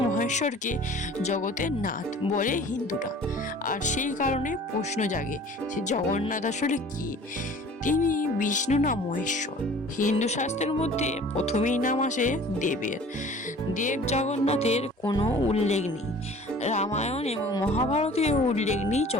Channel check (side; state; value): both; normal; correlation 0.47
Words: মহেশ্বরকে জগতের নাথ বলে হিন্দুরা। আর সেই কারণে প্রশ্ন জাগে যে জগন্নাথ আসলে কি? তিনি বিষ্ণু না মহেশ্বর? হিন্দু শাস্ত্রের মধ্যে প্রথমেই নাম আসে দেবের। দেব জগন্নাথের কোনো উল্লেখ নেই। রামায়ণ এবং মহাভারতেও উল্লেখ নেই